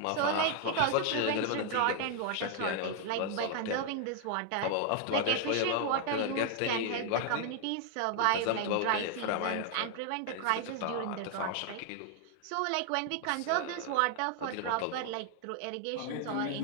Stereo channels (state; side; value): different; both; correlation 0.00